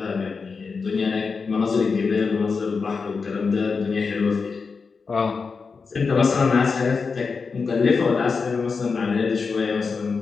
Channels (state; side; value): quieter; right; 5.0 dB